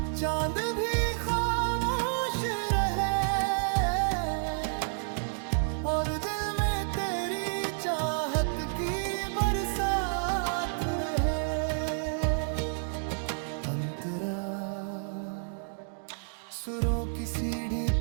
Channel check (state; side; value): silent; left; digital silence